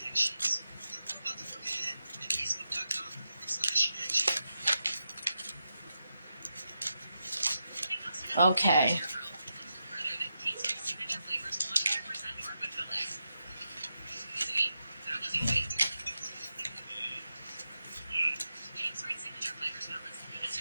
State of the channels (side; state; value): both; inverted; correlation -0.87